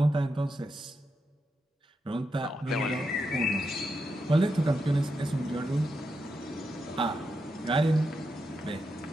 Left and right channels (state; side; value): normal; both; correlation 0.85